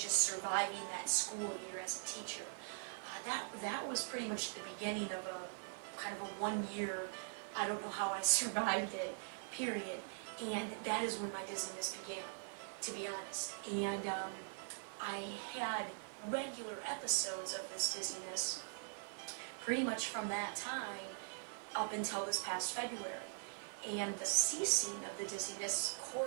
surviving that school year as a teacher. That was pretty much the beginning of a kind of a 1 year, I don't know how I survived it, period. And that is when my dizziness began, to be honest. And I had regular episodes of this dizziness pretty much from that time up until this past February. And the ceasing of the dizziness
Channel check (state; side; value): silent; left; digital silence